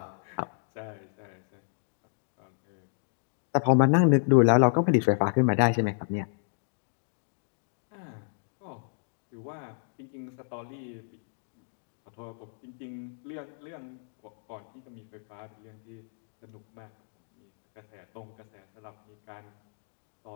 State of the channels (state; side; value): silent; right; digital silence